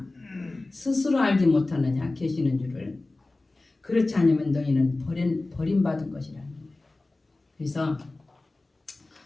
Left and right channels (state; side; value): quieter; right; 3.1 dB